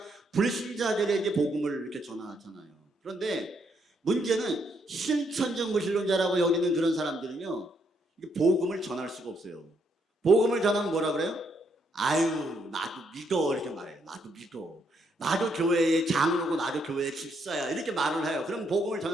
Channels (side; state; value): both; normal; correlation 0.74